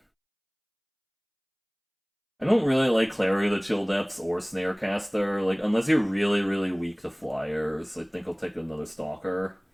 I don't really like Clary of the Chill Depths or Snarecaster. Like, unless you're really, really weak to flyers, I think I'll take another Stalker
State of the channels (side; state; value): both; identical; correlation 1.00